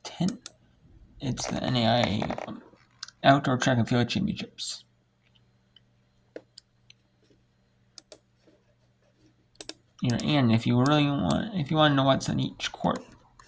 10. It's the NAIA Outdoor Track and Field Championships. And if you want to know what's on each court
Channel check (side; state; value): both; identical; correlation 1.00